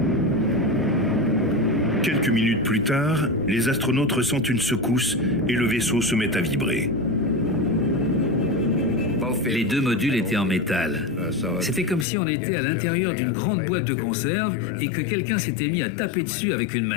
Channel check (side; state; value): right; drops out; at 12.1 s